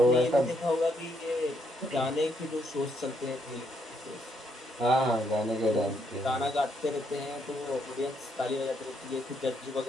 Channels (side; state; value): both; normal; correlation 0.74